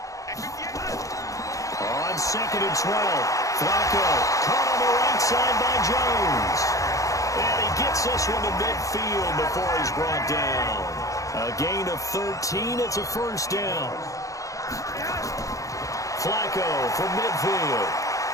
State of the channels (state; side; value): late; right; 0.16 ms